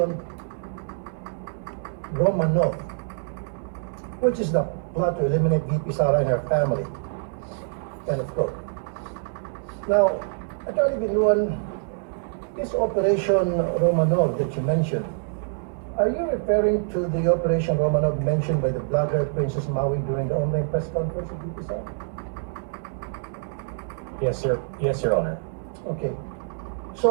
Romanov, which is the plot to eliminate VP Sara and her family. End of quote. Now, Attorney Binuan, this Operation Romanov that you mentioned, are you referring to the Operation Romanov mentioned by the blogger Princess Maui during the online press conference of VP Sara? Yes, Your Honor. Okay.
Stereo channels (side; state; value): left; silent; digital silence